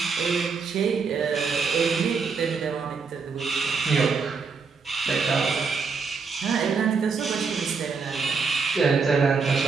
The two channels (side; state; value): left; quieter; 5.1 dB